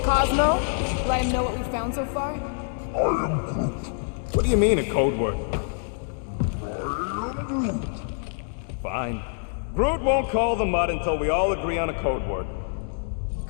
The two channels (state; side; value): silent; right; digital silence